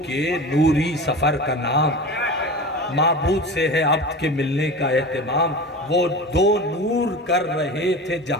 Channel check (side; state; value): both; normal; correlation 0.31